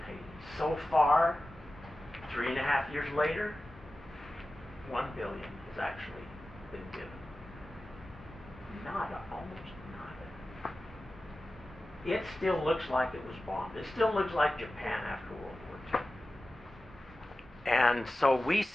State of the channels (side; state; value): both; normal; correlation 0.95